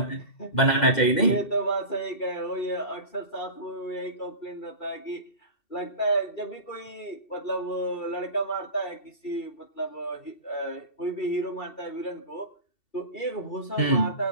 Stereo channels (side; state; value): right; late; 2.7 ms